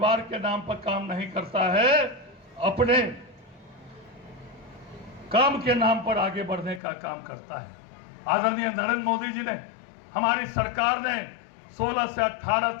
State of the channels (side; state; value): right; drops out; at 6.8 s